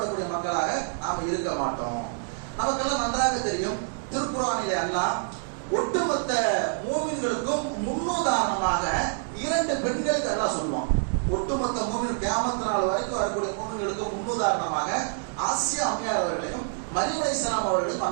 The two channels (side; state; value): left; silent; digital silence